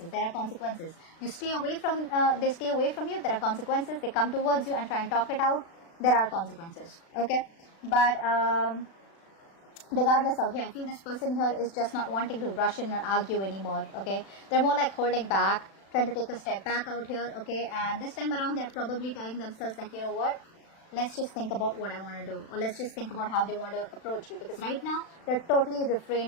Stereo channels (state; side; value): late; right; 36 ms